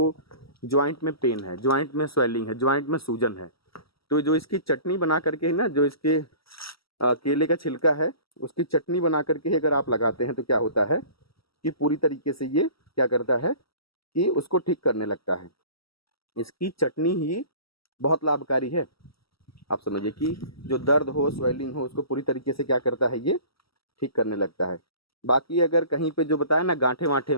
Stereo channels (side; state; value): right; late; 0.75 ms